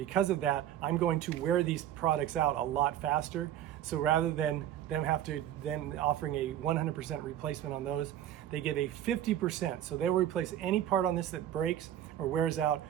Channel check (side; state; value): left; quieter; 11.5 dB